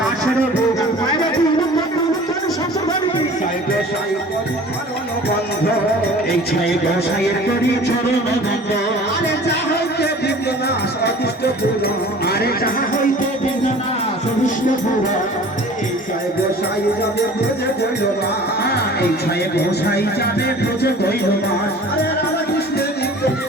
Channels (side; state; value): both; normal; correlation 0.45